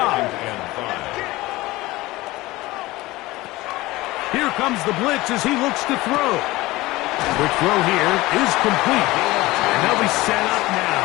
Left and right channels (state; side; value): quieter; right; 19.4 dB